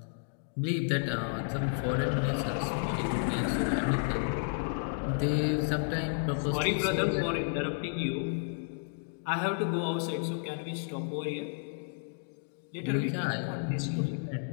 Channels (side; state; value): right; silent; digital silence